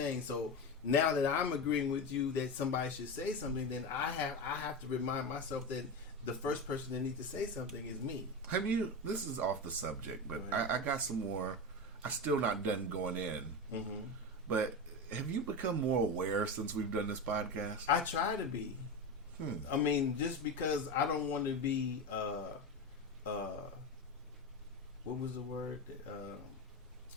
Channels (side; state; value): both; normal; correlation 0.20